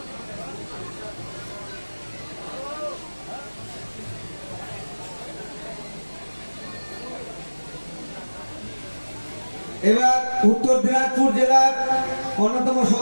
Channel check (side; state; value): both; inverted; correlation -1.00